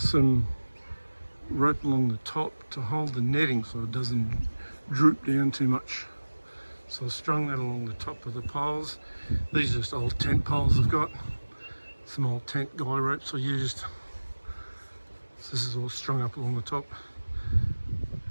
rope along the top to hold the netting so it doesn't droop down too much. So I've strung that along the top of the poles. These are just old tent poles I've got. Some old tent guy ropes I used. So this is all strung up along the top.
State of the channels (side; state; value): both; inverted; correlation -1.00